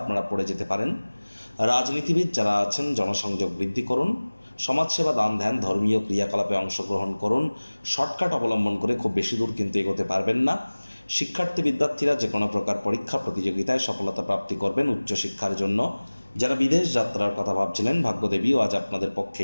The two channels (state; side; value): inverted; both; correlation -1.00